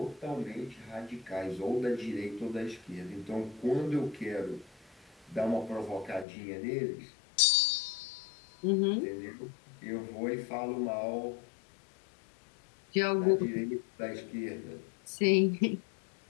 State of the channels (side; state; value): right; drops out; at 6.2 s